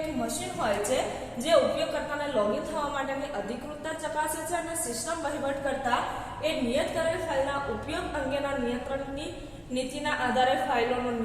મશીન હોય છે જે ઉપયોગકર્તાને લોગિન થવા માટેની અધિકૃતતા ચકાસે છે અને સિસ્ટમ વહીવટકર્તા એ નિયત કરેલ ફાઇલના ઉપયોગ અંગેના નિયંત્રણની નીતિના આધારે ફાઇલોનો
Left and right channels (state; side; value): identical; both; correlation 1.00